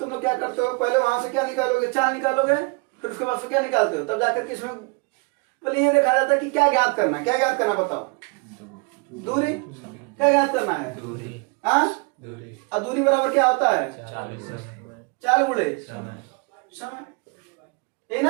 लोग क्या करते हो, पहले वहां से क्या निकालोगे, 4 निकालोगे, फिर उसके बाद से क्या निकालते हो, तब जाकर के इसमें पहले ये देखा जाता है कि क्या ज्ञात करना, क्या ज्ञात करना बताओ, दूरी, क्या ज्ञात करना है, हाँ, अब दूरी बराबर क्या होता है, 4 गुणे समय, ये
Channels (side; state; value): left; quieter; 30.9 dB